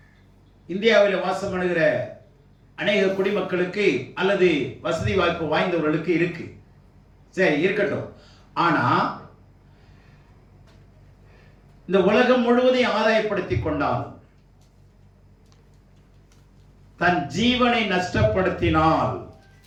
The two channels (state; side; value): identical; both; correlation 1.00